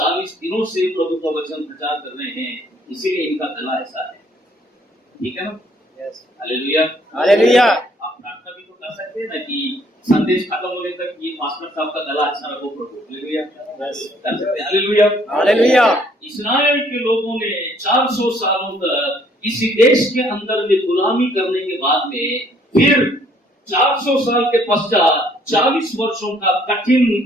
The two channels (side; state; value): both; normal; correlation 0.63